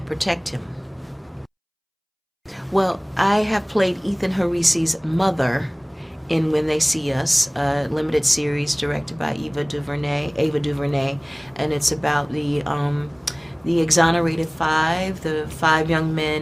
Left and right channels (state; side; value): identical; both; correlation 1.00